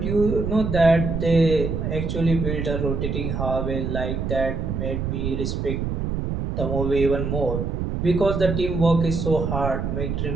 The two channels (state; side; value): noise; right; rumble, 2 dB below the sound